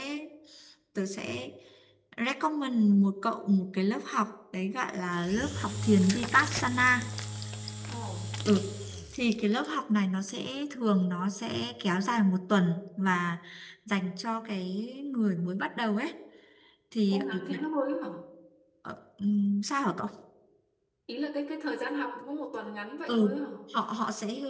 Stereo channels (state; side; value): identical; both; correlation 1.00